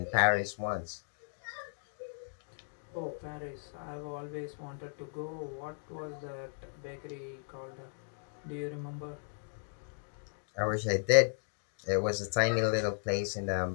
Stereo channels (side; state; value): right; silent; digital silence